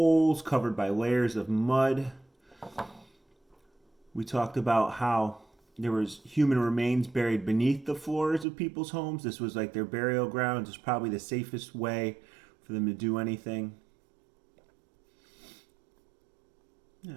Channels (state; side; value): drops out; left; at 8.5 s